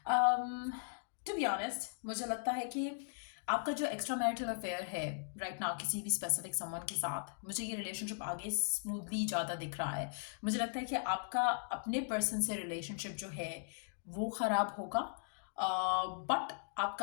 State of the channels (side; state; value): right; silent; digital silence